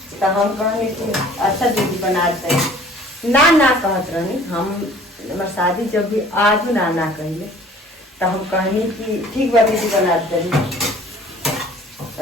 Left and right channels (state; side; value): normal; both; correlation 0.51